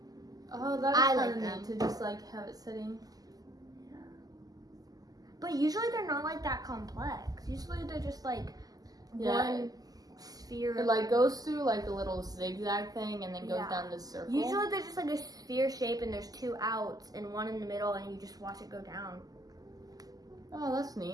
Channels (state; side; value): late; left; 0.18 ms